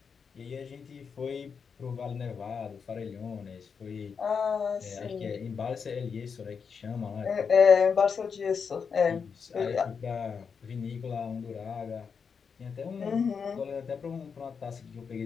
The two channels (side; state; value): right; quieter; 6.1 dB